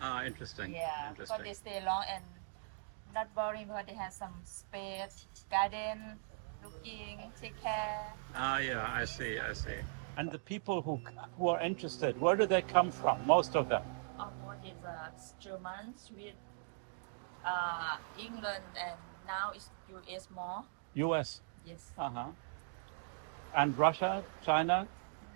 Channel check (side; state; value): left; silent; digital silence